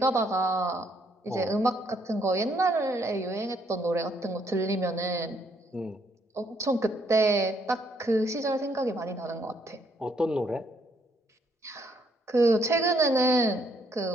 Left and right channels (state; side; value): normal; both; correlation 0.70